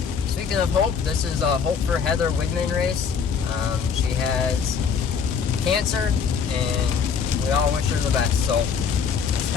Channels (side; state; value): right; quieter; 6.4 dB